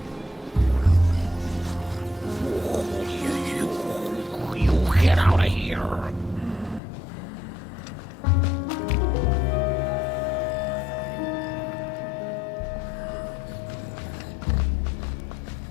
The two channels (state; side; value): drops out; right; at 6.8 s